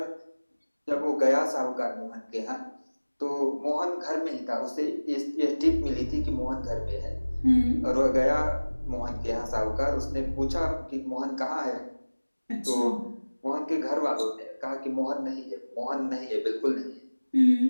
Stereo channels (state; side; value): inverted; both; correlation -1.00